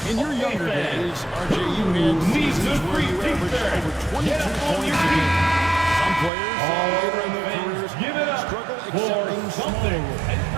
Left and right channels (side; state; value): left; drops out; at 6.3 s